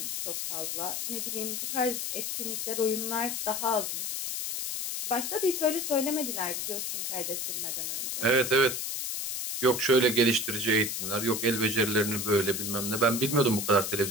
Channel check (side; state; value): left; noise; hiss, 3 dB below the sound